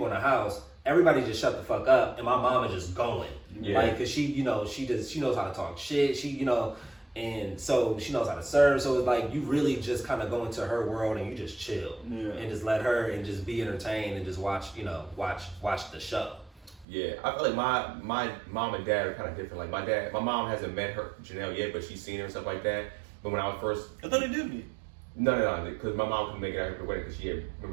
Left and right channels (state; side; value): drops out; left; at 16.9 s